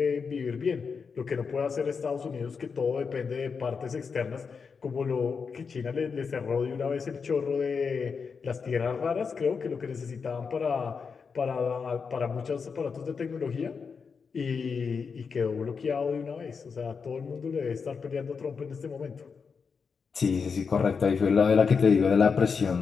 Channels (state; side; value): quieter; right; 5.6 dB